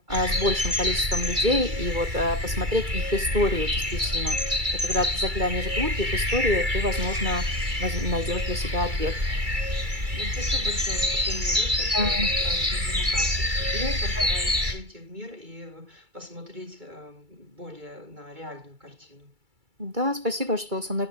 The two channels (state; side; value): late; left; 2.3 ms